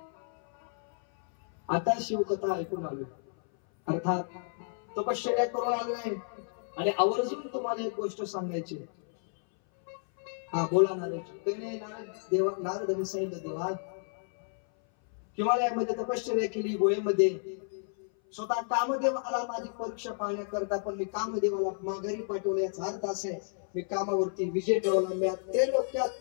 आता शिवकथा ऐकून आलो, अर्थात तपश्चर्या करून आलोय आणि आवर्जून तुम्हाला एक गोष्ट सांगायची. हा बोला नारदजी. नारदांनी सांगितलं, देवा हिमालयामध्ये तपश्चर्या केली, गोळेमध्ये स्वतः कामदेव आला माझी परीक्षा पाहण्याकरता, पण मी कामदेवाला माघारी पाठवलं. याचा अर्थ असा आहे, मी कामावरती विजय ठेवला, मी ते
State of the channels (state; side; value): silent; right; 57 dB below the other